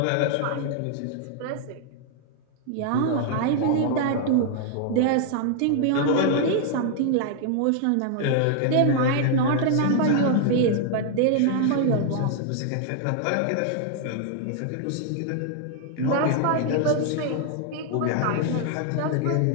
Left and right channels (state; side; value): different; both; correlation 0.00